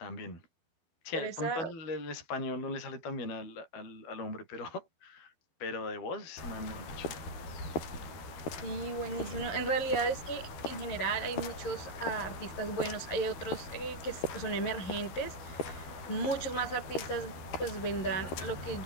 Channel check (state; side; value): late; right; 12 ms